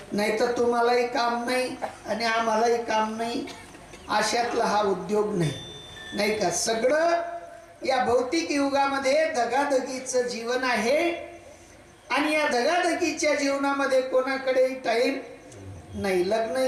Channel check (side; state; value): both; identical; correlation 1.00